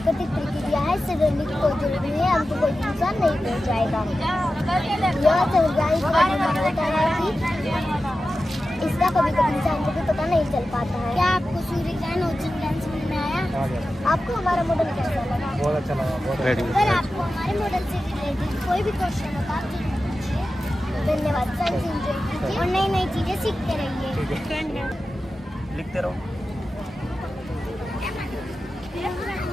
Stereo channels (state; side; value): normal; both; correlation 0.93